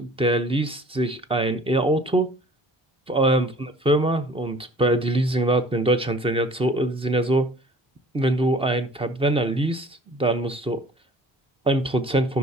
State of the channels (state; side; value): normal; both; correlation 0.49